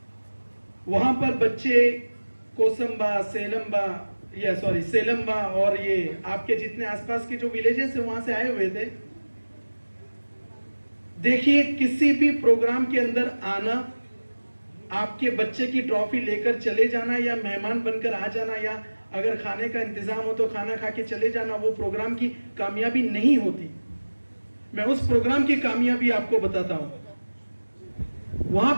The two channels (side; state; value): both; inverted; correlation -1.00